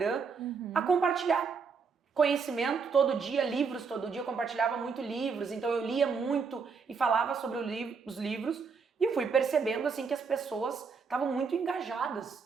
a compartilhar conhecimento todo dia, livros todo dia, eu compartilhava muito livros, então eu lia muito e falava sobre os livros e fui percebendo assim que as pessoas estavam muito engajadas,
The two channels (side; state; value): left; quieter; 5.4 dB